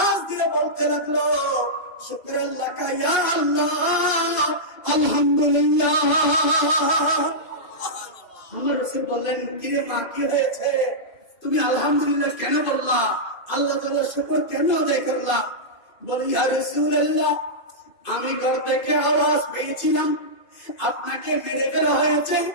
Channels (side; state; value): right; late; 2.5 ms